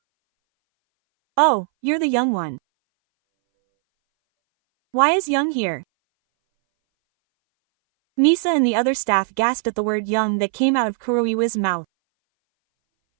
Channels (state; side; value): silent; left; 62 dB below the other